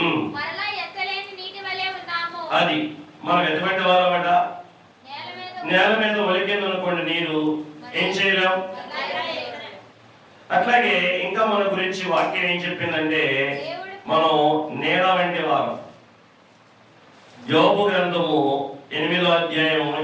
అది మనం ఎటువంటి వారమట? నేల మీద ఒలికింది అనుకోండి నీరు, ఏం చేయలేం. అట్లాగే ఇంకా మన గురించి వాక్యం ఏం చెప్పిందంటే మనం నేల వంటి వారం. యోబు గ్రంథము 8వ అధ్యాయం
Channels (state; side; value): identical; both; correlation 1.00